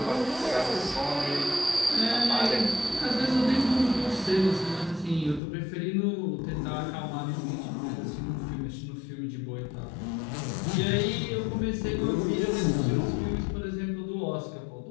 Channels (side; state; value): right; drops out; at 5.4 s